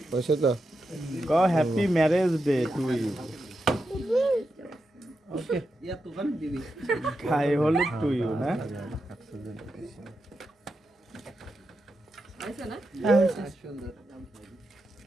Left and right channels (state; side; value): normal; both; correlation 0.87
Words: হয়েছে তো গো happy marriage day to you okay খাই হলো টু ইউ না